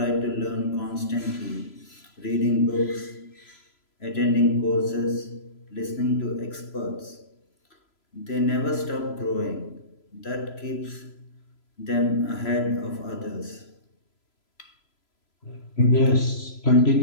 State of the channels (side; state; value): right; late; 3.0 ms